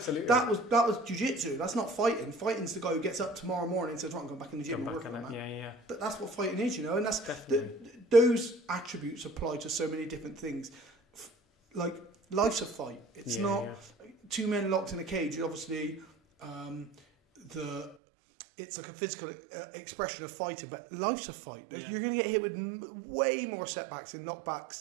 was jiu-jitsu. That's not fighting. Fighting's the guy who gets up tomorrow morning and says, "Right, I'm going back in the gym and work on that." Yeah. But that's what fighting is, you know, and that's those attributes apply to so many different things. Like life's a fight. It's not two men locked in a cage. Obviously, it's like a physical expression of fighting, but life's a fight. Yeah. You're going to get hit with way more setbacks and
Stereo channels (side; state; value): left; drops out; at 17.9 s